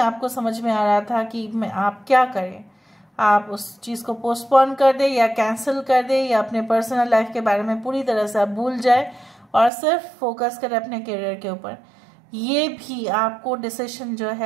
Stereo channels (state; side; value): drops out; left; at 9.7 s